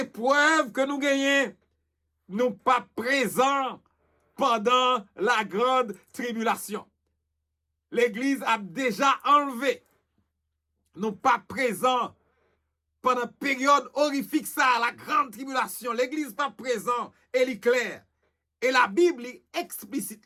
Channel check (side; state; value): both; identical; correlation 1.00